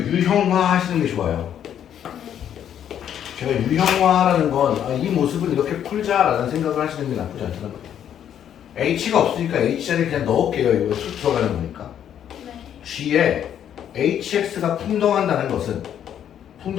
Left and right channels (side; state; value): right; quieter; 9.7 dB